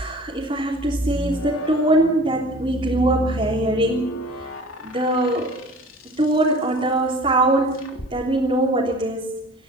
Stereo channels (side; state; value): both; normal; correlation 0.45